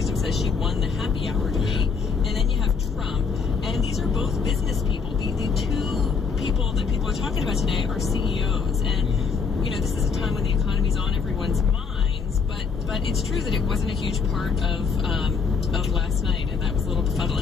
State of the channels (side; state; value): right; quieter; 5.3 dB